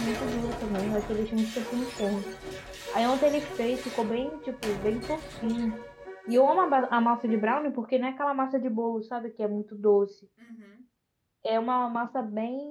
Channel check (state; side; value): identical; both; correlation 1.00